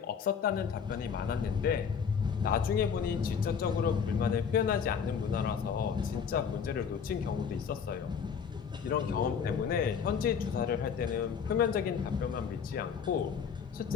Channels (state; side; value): quieter; right; 6.8 dB